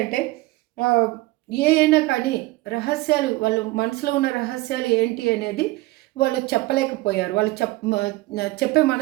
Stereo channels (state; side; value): quieter; left; 20.0 dB